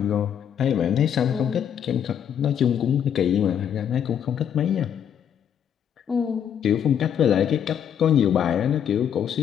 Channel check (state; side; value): quieter; right; 8.8 dB